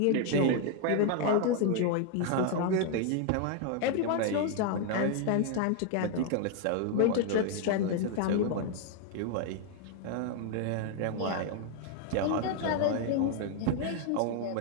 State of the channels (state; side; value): different; both; correlation 0.00